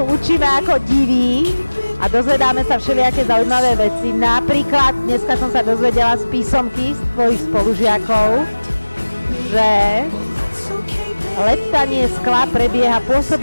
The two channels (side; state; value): both; inverted; correlation -1.00